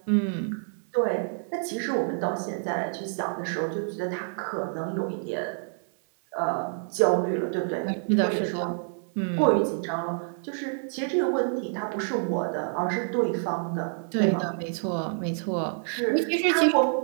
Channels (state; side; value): silent; left; 60 dB below the other